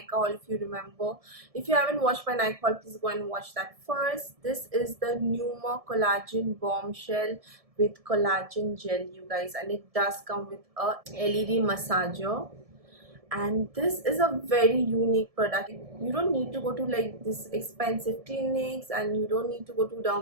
haul, if you remember. If you haven't watched my Nykaa haul, please go and watch that first. This is the Pneuma Collagen Bombshell with collagen gel, you guys, and it does come with a LED massager. And this is a very unique product. You don't need to go to like this expensive clinics, and you don't need to go to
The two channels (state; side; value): late; left; 1.7 ms